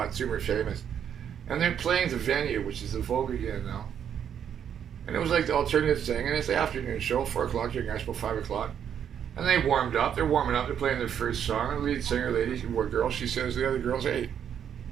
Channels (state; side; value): quieter; left; 8.7 dB